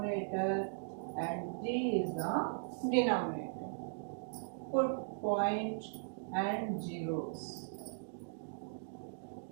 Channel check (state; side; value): silent; left; digital silence